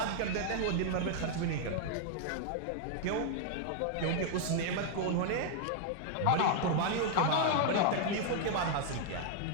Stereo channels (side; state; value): both; different; correlation 0.00